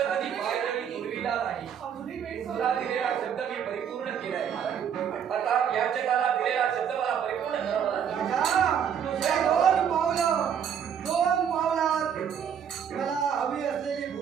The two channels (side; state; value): left; quieter; 8.2 dB